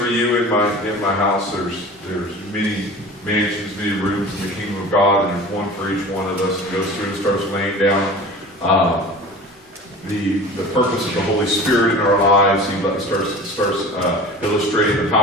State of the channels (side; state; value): both; normal; correlation 0.38